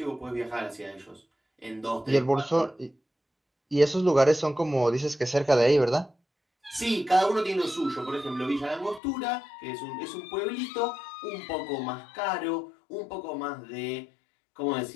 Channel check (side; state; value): right; drops out; at 9.0 s